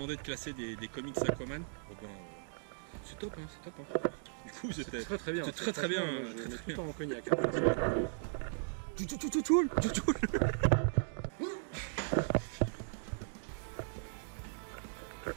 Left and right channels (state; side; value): silent; left; digital silence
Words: de classer des comics Aquaman. Oh ben, c'est top, hein, c'est top. Hein. Du coup, c'était très bien. C'est très bien. Franchement, je mets tout le temps en cognac. Hein, personnellement.